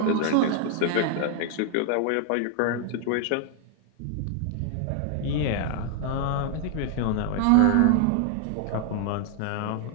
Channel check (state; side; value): different; both; correlation 0.00